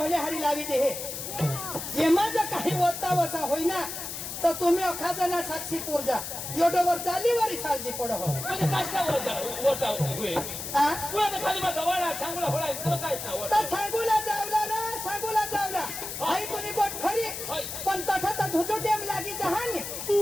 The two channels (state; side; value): noise; left; hiss, 7 dB below the sound